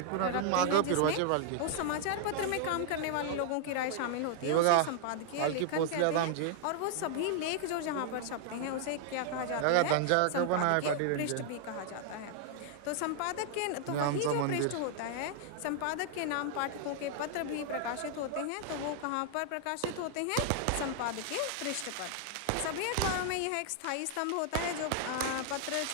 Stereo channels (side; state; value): both; different; correlation 0.00